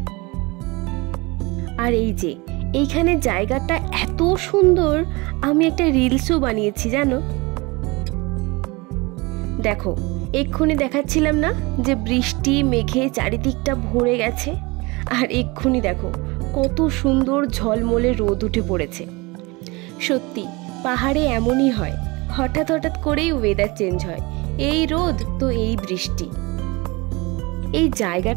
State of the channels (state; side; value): quieter; left; 25.1 dB